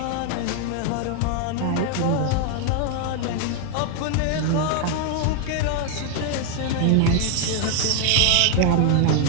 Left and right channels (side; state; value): both; different; correlation 0.00